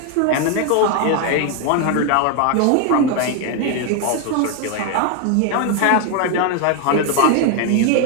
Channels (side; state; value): both; different; correlation 0.01